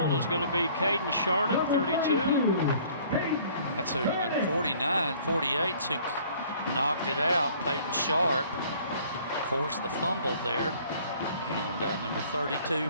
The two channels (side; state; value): both; inverted; correlation -0.55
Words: is going to be Caden Sharnick, 32. That's who, 48's who knocked it out. Peyton Sharp forced the fumble there. And number 32